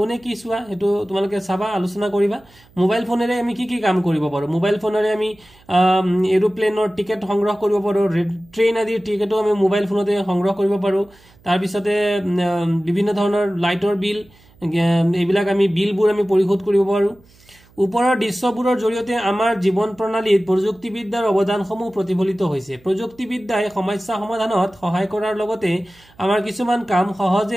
কি চোৱা এটো তোমালোকে চাবা আলোচনা কৰিবা মোবাইল ফোনেৰে আমি কি কাম কৰিব পাৰো মোবাইল ফোনেৰে আমি এৰোপ্লেনৰ টিকেট সংগ্ৰহ কৰিব পাৰো ট্ৰেইন আদিৰ টিকেটো আমি মোবাইল ফোনতে সংগ্ৰহ কৰিব পাৰো তাৰ পিছতে বিভিন্ন ধৰণৰ লাইটৰ বিল এইবিলাক আমি বিলবোৰ আমি পৰিশোধ কৰিব পাৰো ওপৰৰ দৃশ্যবোৰৰ জৰিয়তে আমাৰ জীৱন প্ৰণালীত প্ৰযুক্তিবিদ্যাৰ অৱদানসমূহ প্ৰতিফলিত হৈছে প্ৰযুক্তিবিদ্যাই সমস্যা সমাধানত সহায় কৰাৰ লগতে আমাৰ কিছুমান কাম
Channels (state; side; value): noise; right; hum, 29 dB below the sound